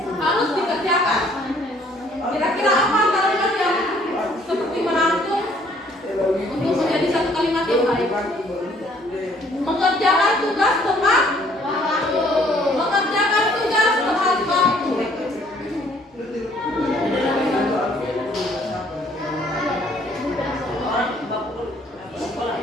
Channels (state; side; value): normal; both; correlation 0.61